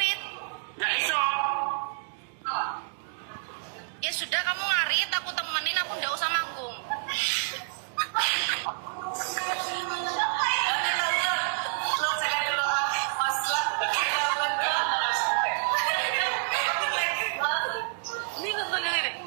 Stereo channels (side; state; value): left; silent; digital silence